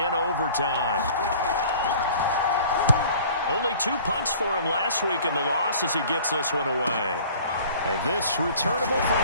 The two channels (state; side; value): inverted; both; correlation -0.49